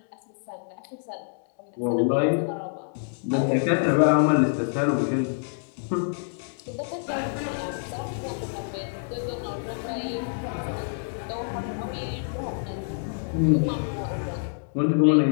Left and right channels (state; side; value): silent; right; 60 dB below the other